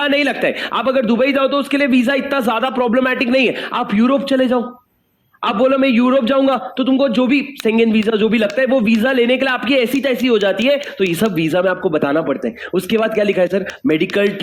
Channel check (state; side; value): identical; both; correlation 1.00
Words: नहीं लगता है, आप अगर दुबई जाओ तो उसके लिए वीजा इतना ज्यादा प्रॉब्लमैटिक नहीं है। आप यूरोप चले जाओ, आप बोलो मैं यूरोप जाऊंगा, तो तुमको जो भी शेंगेन वीजा जो भी लगता है, वो वीजा लेने के लिए आपकी ऐसी तैसी हो जाती है। तो ये सब वीजा में आपको बताना पड़ता है। उसके बाद क्या लिखा है सर? Medical